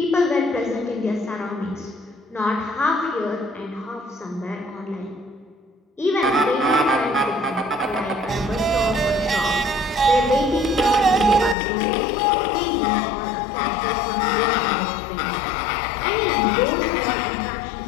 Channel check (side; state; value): right; drops out; at 11.6 s